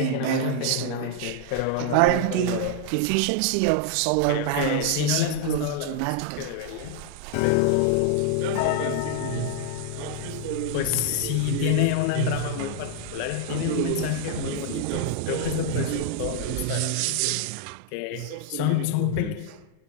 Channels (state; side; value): different; both; correlation 0.00